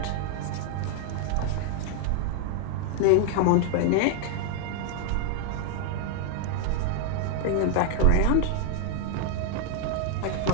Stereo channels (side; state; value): both; different; correlation 0.00